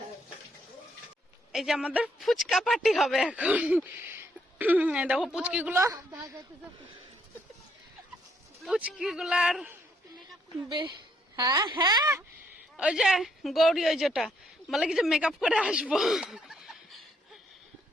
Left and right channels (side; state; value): both; normal; correlation 0.72